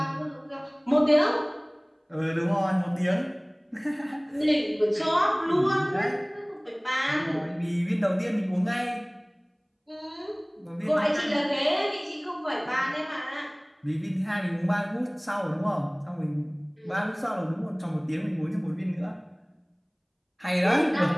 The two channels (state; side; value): identical; both; correlation 1.00